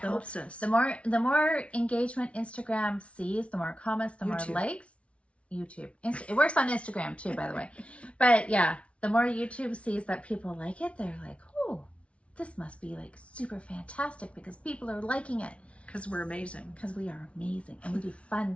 us. The more engagement Instagram sees, the more comments, the more likes. YouTube. It works on Instagram too, by the way. But yeah, the more YouTube sees that people like it, they're like, oh, this must be like super fantastic because people are liking it. Because we're amazing. Because we are amazing. And we do fun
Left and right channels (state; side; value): late; right; 0.062 ms